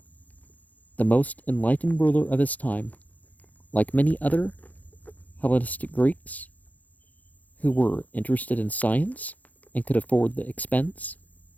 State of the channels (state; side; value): late; right; 0.078 ms